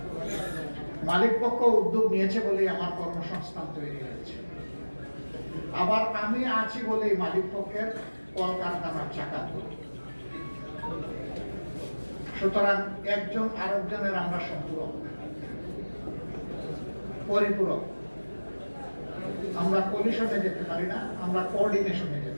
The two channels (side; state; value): both; inverted; correlation -1.00